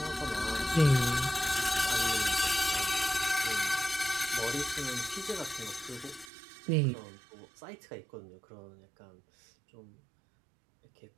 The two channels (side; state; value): left; drops out; at 6.3 s